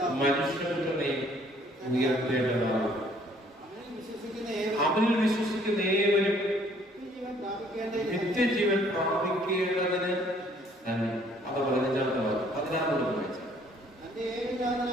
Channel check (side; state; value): both; normal; correlation 0.60